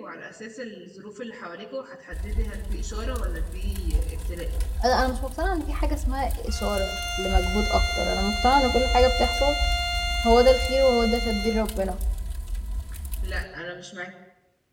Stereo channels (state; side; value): identical; both; correlation 1.00